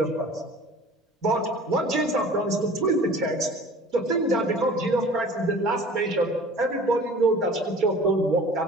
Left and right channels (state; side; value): normal; both; correlation 0.45